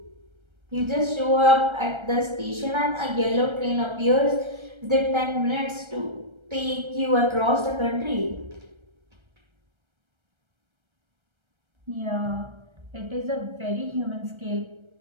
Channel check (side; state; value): left; late; 1.3 ms